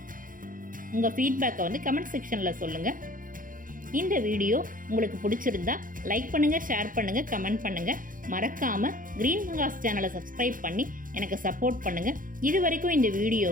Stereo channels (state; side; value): late; left; 0.40 ms